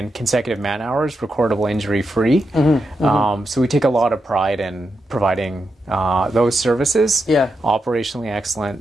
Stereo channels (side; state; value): both; normal; correlation 0.86